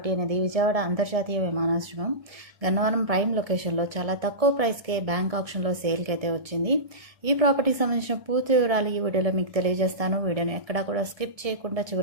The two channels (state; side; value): late; left; 1.7 ms